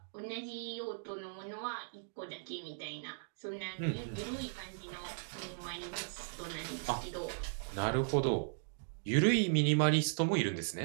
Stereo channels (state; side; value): silent; left; digital silence